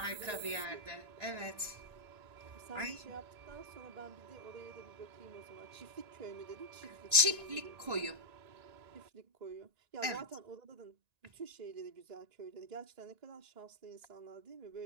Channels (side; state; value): left; late; 1.9 ms